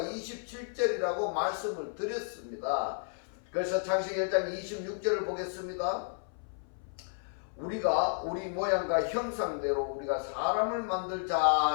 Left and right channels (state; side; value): silent; right; 56 dB below the other